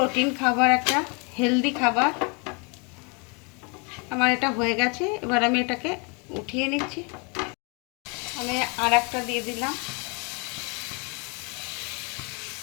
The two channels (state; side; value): quieter; right; 33.0 dB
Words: খাবার, একটা হেলদি খাবার। আমার এটা হয়ে গেছে। এবার আমি এটাকে উঠিয়ে নিচ্ছি। আমি আর একটা দিয়ে দিলাম।